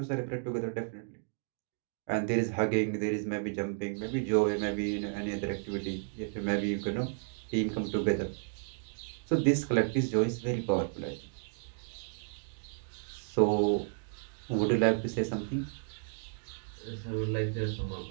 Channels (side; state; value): left; silent; digital silence